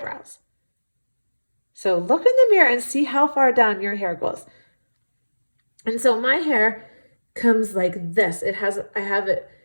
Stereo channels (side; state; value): both; inverted; correlation -1.00